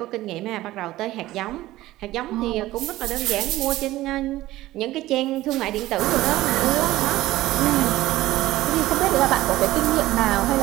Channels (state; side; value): quieter; left; 16.4 dB